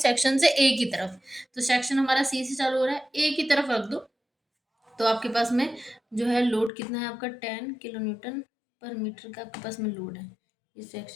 से ए की तरफ। तो सेक्शन हमारा सी से चालू हो रहा है, ए की तरफ रख दो, तो आपके पास में जो है लोड कितना है आपका 10 किलो न्यूटन पर मीटर का आपके पास में लोड है। ये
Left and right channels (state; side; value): drops out; right; at 6.7 s